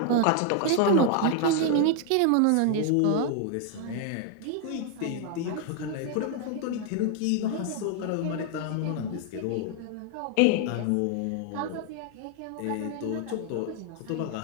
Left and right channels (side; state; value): both; different; correlation 0.00